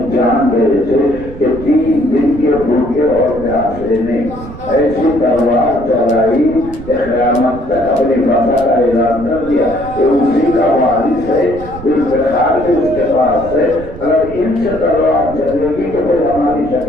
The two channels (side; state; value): right; noise; rumble, 13 dB below the sound